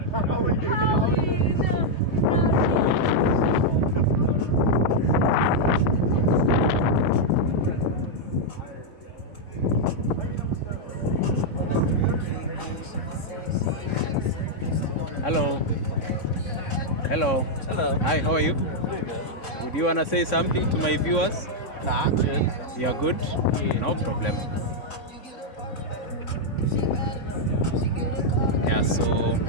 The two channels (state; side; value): late; right; 3.4 ms